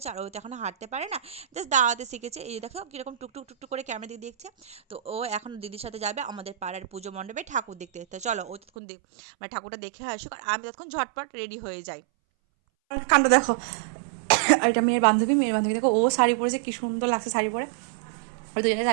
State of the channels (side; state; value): left; drops out; at 8.6 s